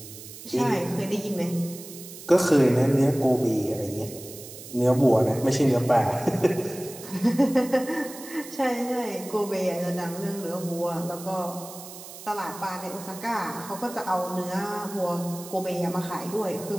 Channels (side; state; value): right; noise; hiss, 14 dB below the sound